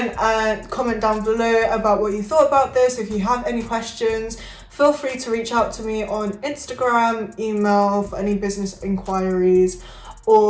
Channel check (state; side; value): identical; both; correlation 1.00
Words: and comment down below about what you thought about this. If you have any questions, feel free to reach out to me on Instagram, email for any business inquiries,